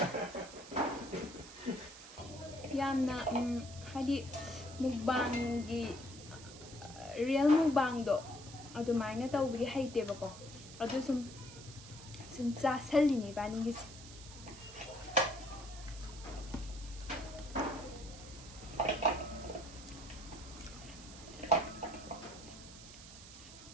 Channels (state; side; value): noise; right; hiss, 16 dB below the sound